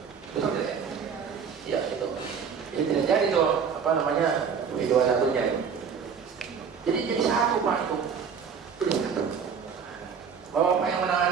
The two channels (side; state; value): left; quieter; 6.5 dB